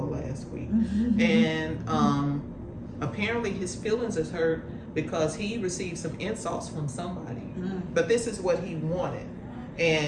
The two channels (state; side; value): identical; both; correlation 1.00